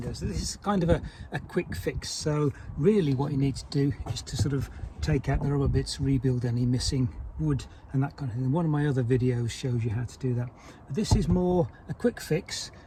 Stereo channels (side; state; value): both; identical; correlation 1.00